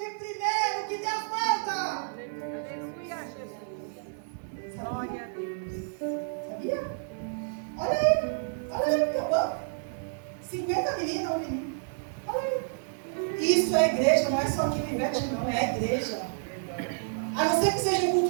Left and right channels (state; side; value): silent; left; digital silence